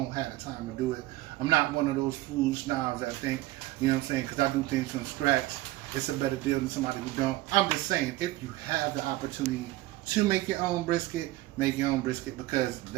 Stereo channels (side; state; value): left; quieter; 17.5 dB